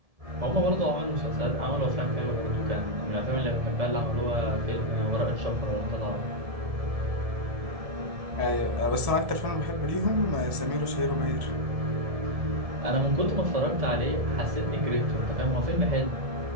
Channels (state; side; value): late; left; 1.7 ms